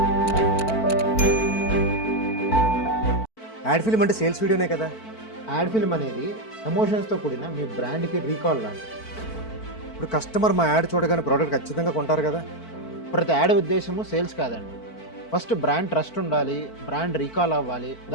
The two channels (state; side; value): late; right; 4.5 ms